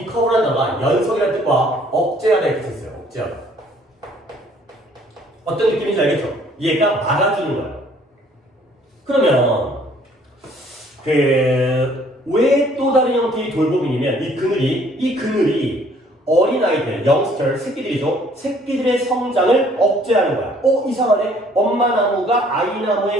커브라는 단어가 연석이라는 뜻과 억제하다 이렇게 썼어요. 억제하다. 어떤 느낌인지 알겠죠? 얘가 막아주는 거야. 그러면 왜 또 다른 형태의 돌봄이냐면 이 그늘이 어린아이들, 영스터, 새끼들이죠. 새끼들의 성장을 억제하는 거야. 이상하네. 엄마 나무가 아이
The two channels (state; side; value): normal; both; correlation 0.59